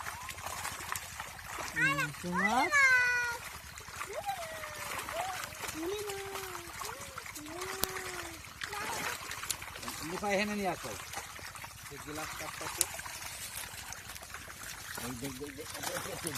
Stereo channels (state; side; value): identical; both; correlation 1.00